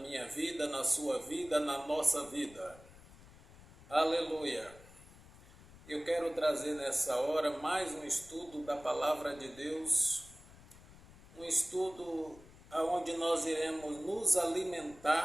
vida, na sua vida, na nossa vida. Aleluia! Eu quero trazer nessa hora mais um estudo da Palavra de Deus, um estudo onde nós iremos nos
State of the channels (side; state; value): left; noise; rumble, 21 dB below the sound